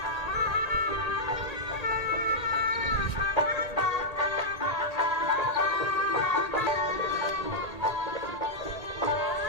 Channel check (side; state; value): right; late; 1.8 ms